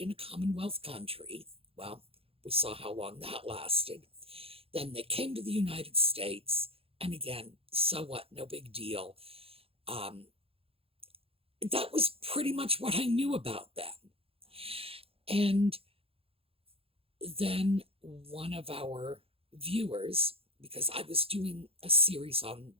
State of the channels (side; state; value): left; late; 0.27 ms